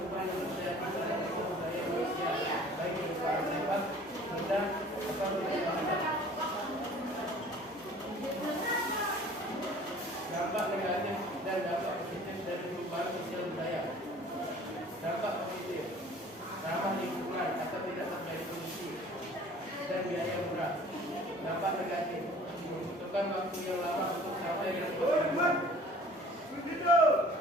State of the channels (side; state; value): both; normal; correlation 0.49